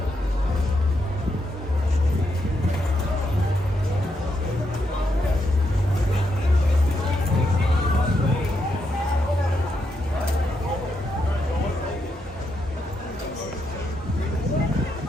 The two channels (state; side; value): normal; both; correlation 0.81